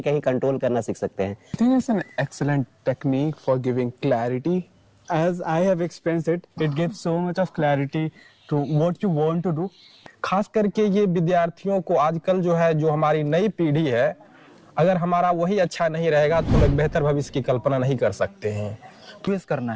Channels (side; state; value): both; identical; correlation 1.00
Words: कंट्रोल करना सीख सकते हैं। I think it's an excellent technique for giving clarity. As I have experienced it, it gives so much of clarity to what you want to do. खास करके ये विद्यार्थियों को आजकल जो है, जो हमारी नई पीढ़ी है, अगर हमारा वही अच्छा नहीं रहेगा तो हम एक बेहतर भविष्य की कल्पना नहीं कर सकते हैं। ट्विस्ट करना